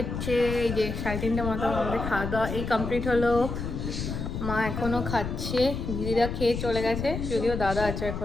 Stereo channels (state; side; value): noise; left; rumble, 4 dB below the sound